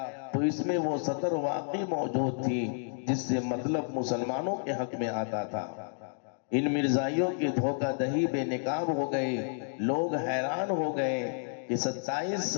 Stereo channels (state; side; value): silent; right; digital silence